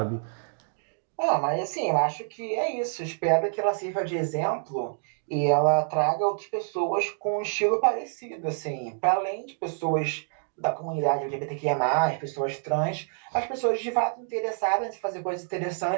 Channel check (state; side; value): silent; left; digital silence